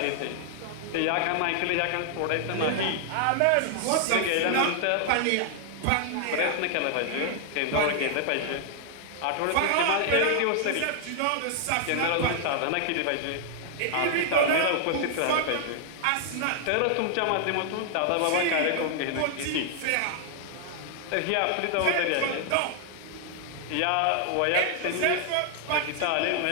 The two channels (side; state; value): both; different; correlation 0.00